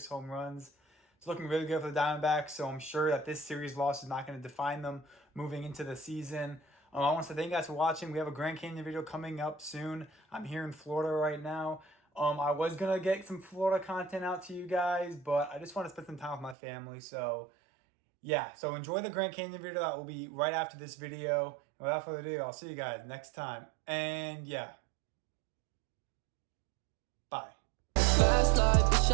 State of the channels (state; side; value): drops out; left; at 16.6 s